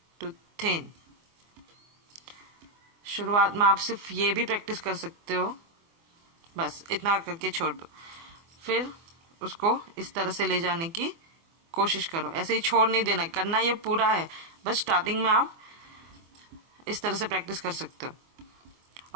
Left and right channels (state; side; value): late; left; 24 ms